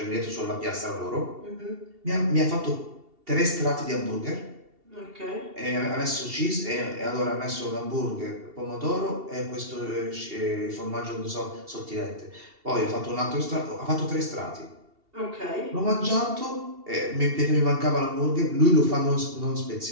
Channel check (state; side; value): late; left; 2.7 ms